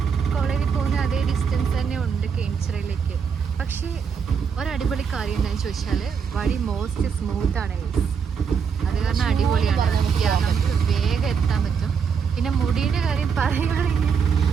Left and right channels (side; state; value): left; quieter; 6.5 dB